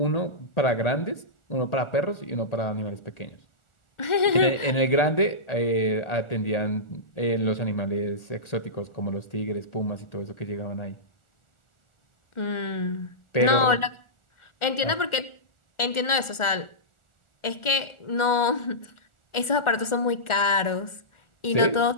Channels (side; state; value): right; late; 1.4 ms